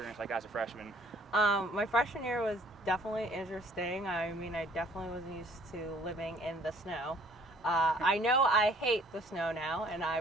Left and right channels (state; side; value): normal; both; correlation 0.57